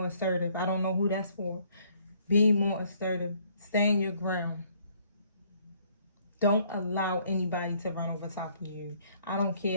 assertive. I don't know who that's for. Be more assertive. Stand your ground. Don't allow anybody to run over top of you. I don't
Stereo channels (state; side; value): inverted; both; correlation -0.64